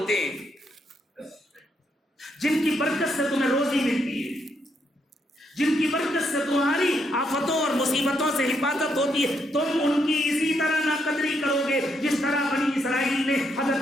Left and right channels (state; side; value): normal; both; correlation 0.76